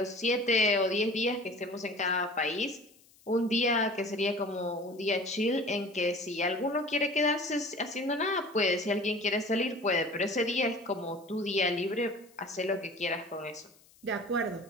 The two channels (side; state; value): left; noise; hiss, 28 dB below the sound